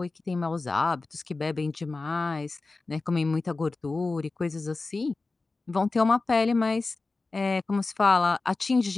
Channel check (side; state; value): right; quieter; 3.6 dB